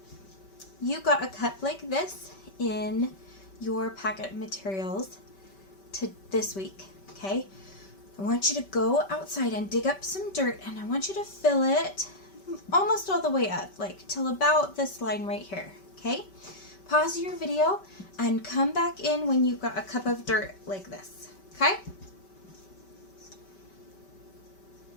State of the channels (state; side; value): late; right; 5.2 ms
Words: you got a cup like this in your packet of materials to this week, okay? I want you to go outside and dig up some dirt, and I want you to fill it almost all the way up, like till about this line right here, okay? Pause your video and come back in when you've got a cup of dirt like this, okay?